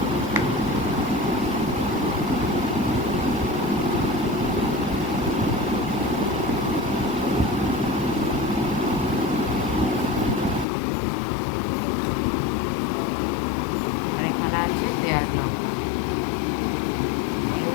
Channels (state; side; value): drops out; right; at 10.7 s